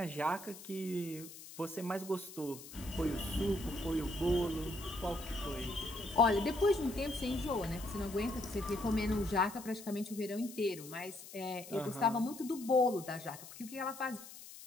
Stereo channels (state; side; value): noise; left; hiss, 15 dB below the sound